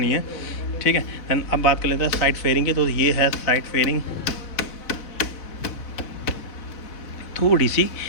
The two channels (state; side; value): late; right; 4.0 ms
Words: है, ठीक है। दैन अब बात कर लेते हैं साइड फेयरिंग की। तो ये है साइड फेयरिंग, थोड़ी सी